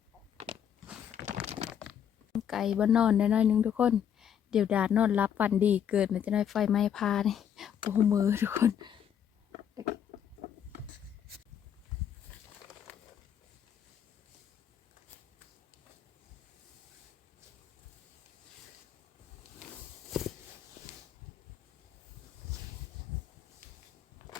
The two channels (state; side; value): quieter; right; 8.9 dB